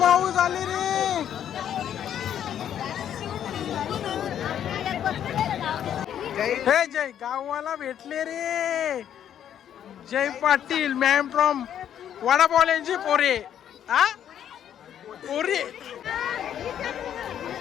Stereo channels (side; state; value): right; quieter; 9.8 dB